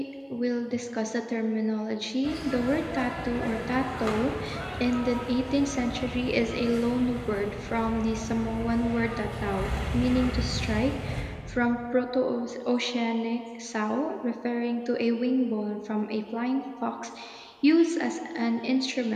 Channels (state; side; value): identical; both; correlation 1.00